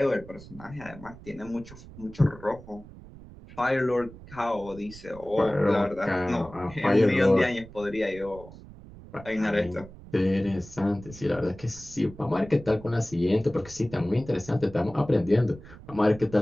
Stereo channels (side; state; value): right; noise; rumble, 18 dB below the sound